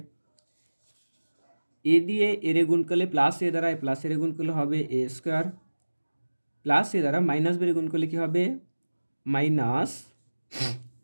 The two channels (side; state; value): both; inverted; correlation -1.00